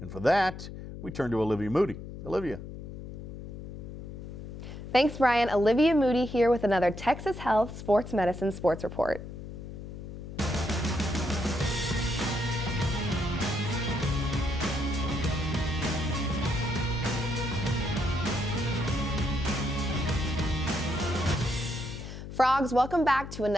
for that, we turn to Olivia Moody. Olivia. Thanks, Brian. Olivia Moody here with another Texas Health Sports Medicine Sports Report. Frogs, welcome back to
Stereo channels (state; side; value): noise; left; hum, 10 dB below the sound